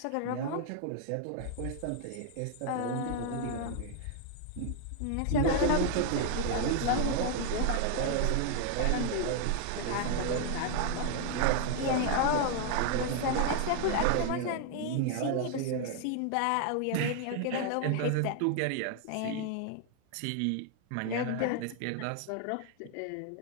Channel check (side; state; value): both; different; correlation 0.00